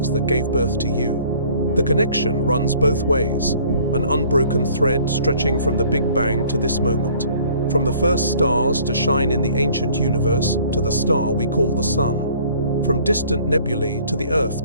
that gave birth to you. The connection runs both ways, an unbroken thread stretching from the Big Bang to this moment, from the first stars to shine in the ancient universe to the star we call the Sun. from distant nebulae to the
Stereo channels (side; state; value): both; inverted; correlation -0.54